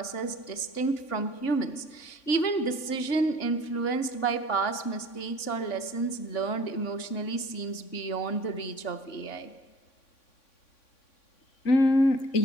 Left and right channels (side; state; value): right; late; 3.6 ms